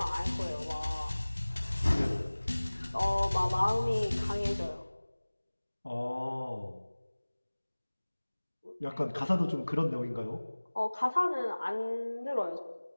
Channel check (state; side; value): inverted; both; correlation -1.00